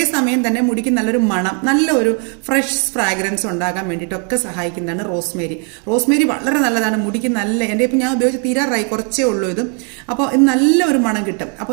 തന്നെ മുടിക്ക് നല്ലൊരു മണം, നല്ലൊരു ഫ്രഷ് ഫ്രാഗ്രൻസ് ഉണ്ടാകാൻ വേണ്ടിയിട്ടൊക്കെ സഹായിക്കുന്നതാണ് റോസ്മേരി. റോസ്മേരി വളരെ നല്ലതാണ് മുടിക്ക്. എൻ്റെ ഇപ്പം ഞാൻ ഉപയോഗിച്ച് തീരാറായി, കുറച്ചേ ഉള്ളൂ ഇത്. അപ്പോൾ ഇത് നല്ലൊരു മണം കിട്ടും.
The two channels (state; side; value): quieter; left; 39.8 dB